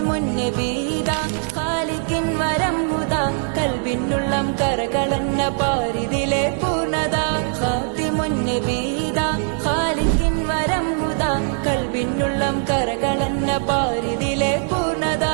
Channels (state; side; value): silent; left; 65 dB below the other